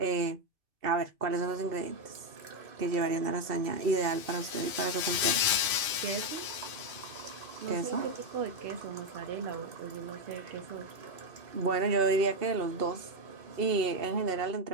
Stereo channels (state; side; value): late; left; 2.5 ms